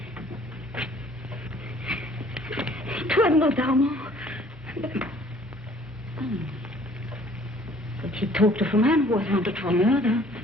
It was not Armand. But he talked of a man who was wanted for murder.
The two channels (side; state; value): both; normal; correlation 0.56